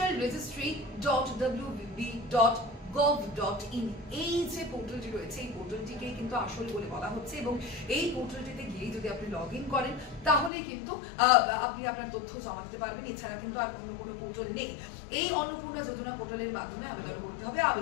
এই যে পোর্টালটি রয়েছে, এই পোর্টালটিকেই কিন্তু আসল বলে বলা হচ্ছে। এবং এই পোর্টালটিতে গিয়ে যদি আপনি লগ ইন করেন তাহলে কিন্তু আপনি আপনার তথ্য জমা দিতে পারবেন। এছাড়া কিন্তু আর অন্য কোনো পোর্টাল নেই। এই অন্নপূর্ণা যোজনা পোর্টালের মাধ্যমে আবেদন করতে হবে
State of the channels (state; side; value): drops out; right; at 10.5 s